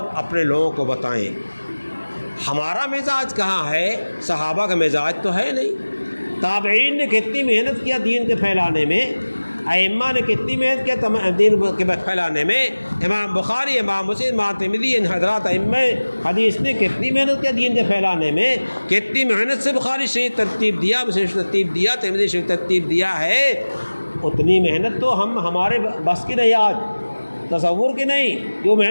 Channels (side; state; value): both; inverted; correlation -1.00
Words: اپنے لوگوں کو بتائیں۔ ہمارا مزاج کہاں ہے؟ صحابہ کا مزاج تو ہے نہیں۔ تابعین نے کتنی محنت کیا دین کے پھیلانے میں، ائمہ نے کتنی محنت کیا دین کے پھیلانے میں، امام بخاری، امام مسلم، امام ترمذی، ان حضرات ائمہ حدیث نے کتنی محنت کیا دین کے پھیلانے میں، کتنی محنت سے بخاری شریف ترتیب دیا، مسلم شریف ترتیب دیا، ترمذی شریف ترتیب دیا ہے۔ اتنی محنت تو ہمارے بس کی نہیں، آج تصور کی نہیں جو